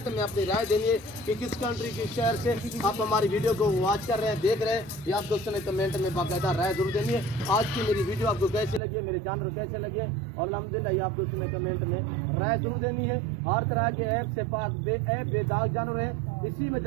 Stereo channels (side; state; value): left; drops out; at 8.8 s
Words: में अपनी राय देनी है कि किस कंट्री किस शहर से आप हमारी वीडियो को वॉच कर रहे हैं, देख रहे हैं। ये आप दोस्तों ने कमेंट में बाकायदा राय जरूर देनी है। आज की मेरी वीडियो आपको कैसे लगी है, मेरे जानवर कैसे लगे, और अल्हम्दुलिल्लाह ये आप दोस्तों ने कमेंट में राय जरूर देनी है। हर तरह के ऐप से पाक बेदाग जानवर है। इसी